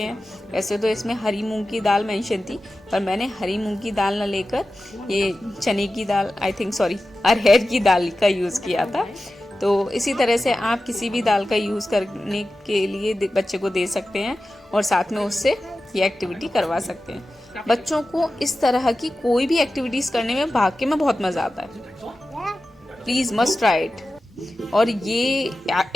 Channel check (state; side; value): normal; both; correlation 0.94